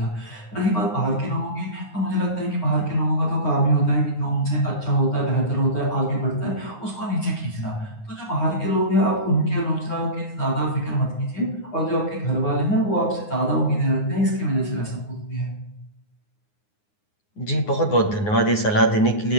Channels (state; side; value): late; right; 9.6 ms